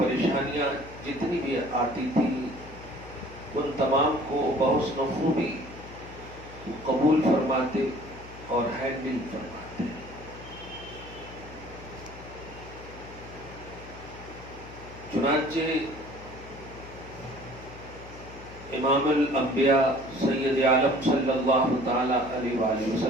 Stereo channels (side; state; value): left; noise; hum, 17 dB below the sound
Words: جتنی بھی آتی تھی ان تمام کو بحسن خوبی قبول فرماتے اور ہینڈل فرماتے. چنانچہ امام الانبیاء سید عالم صلی اللہ تعالی علیہ وآلہ